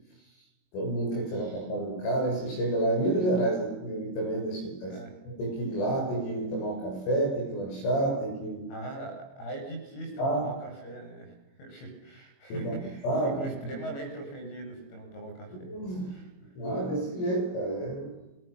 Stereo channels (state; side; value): late; right; 22 ms